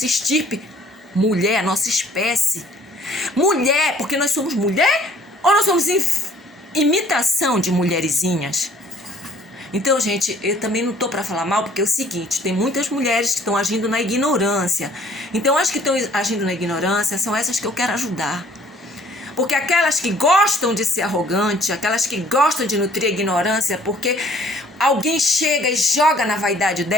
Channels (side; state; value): both; normal; correlation 0.56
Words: estirpe. Mulher, a nossa espécie. Mulher, porque nós somos mulher ou nós somos imitação de mulherzinhas? Então, gente, eu também não tô para falar mal, porque é o seguinte, tem muitas mulheres que estão agindo na ignorância. Então, as que estão agindo na ignorância são essas que eu quero ajudar. Porque aquelas que gostam de ser arrogante, aquelas que gostam de nutrir a ignorância, porque alguém chega e joga na vaidade